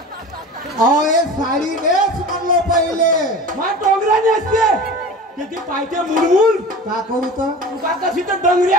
अहो हे साडी नेस म्हणलो पहिले मा डोंगराने असते किती पायते मुलमुल का करू तर तुका कशी तर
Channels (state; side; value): normal; both; correlation 0.35